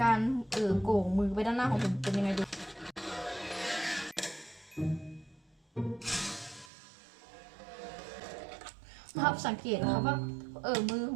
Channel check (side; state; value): left; drops out; at 6.7 s